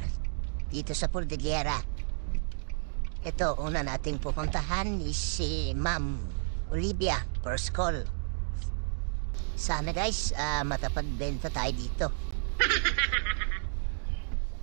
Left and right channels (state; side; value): silent; left; digital silence